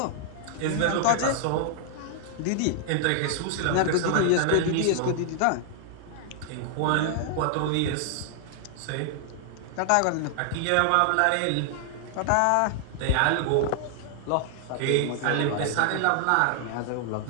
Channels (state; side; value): different; both; correlation -0.01